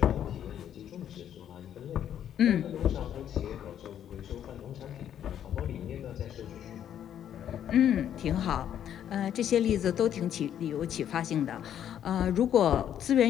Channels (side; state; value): right; quieter; 10.0 dB